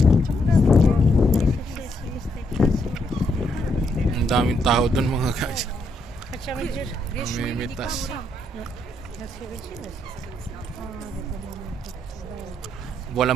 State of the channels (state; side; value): normal; both; correlation 0.76